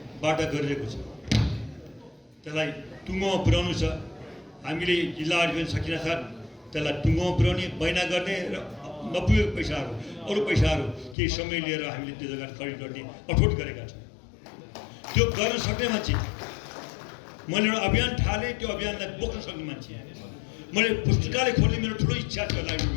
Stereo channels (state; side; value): drops out; right; at 11.2 s